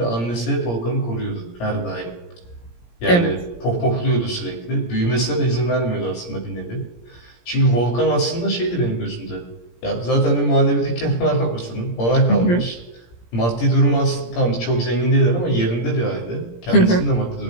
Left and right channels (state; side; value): late; right; 17 ms